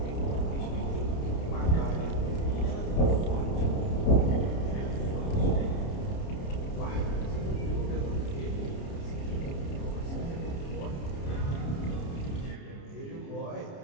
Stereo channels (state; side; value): late; right; 29 ms